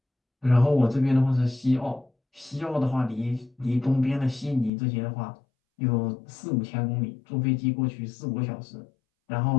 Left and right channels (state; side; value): drops out; right; at 4.7 s